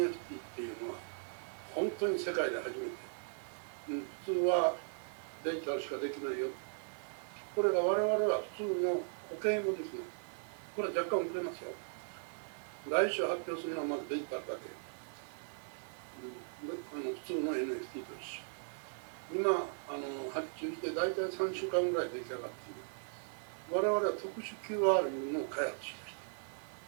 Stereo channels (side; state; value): left; silent; digital silence